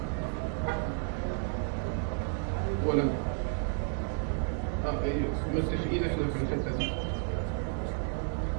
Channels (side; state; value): left; silent; 57 dB below the other